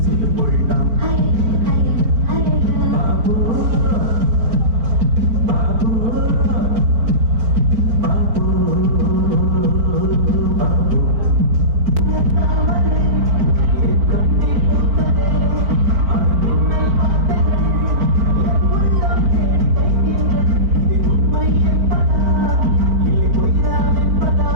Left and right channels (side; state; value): left; late; 4.4 ms